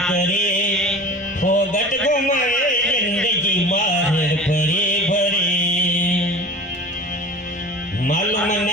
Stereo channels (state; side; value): normal; both; correlation 0.37